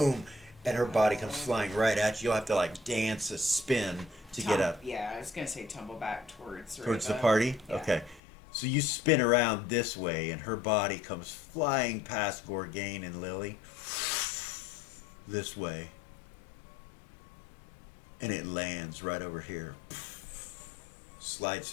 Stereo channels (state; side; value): drops out; right; at 8.2 s